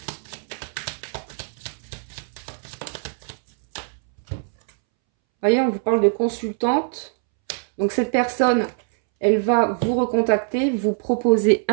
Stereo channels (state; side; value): silent; left; 64 dB below the other